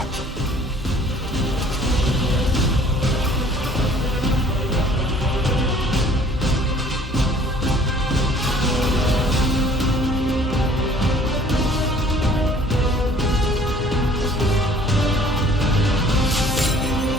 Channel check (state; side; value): normal; both; correlation 0.54